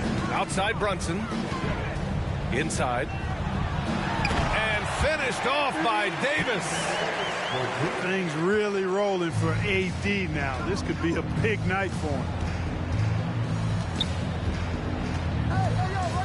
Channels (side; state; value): both; identical; correlation 1.00